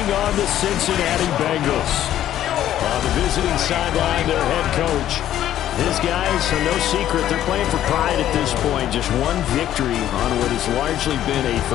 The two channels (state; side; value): quieter; right; 11.9 dB